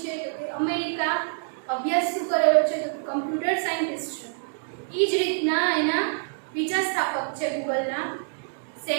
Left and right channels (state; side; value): silent; left; digital silence